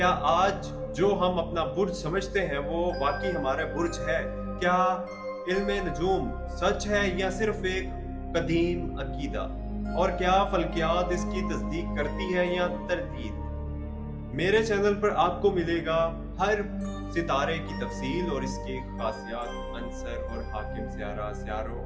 आज जो हम अपना बुर्ज समझते हैं वो वाकई हमारा बुर्ज है? क्या इल्म नजूम सच है या सिर्फ एक कदीम अकीदा? और क्या फल्कियात इसकी तस्दीक करती है या तरदीद? मेरे चैनल पर आपको मिलेगा हर सितारे की तफसील और इसके खासियात, अंसर और हाकिम सियारा, सियारों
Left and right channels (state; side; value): identical; both; correlation 1.00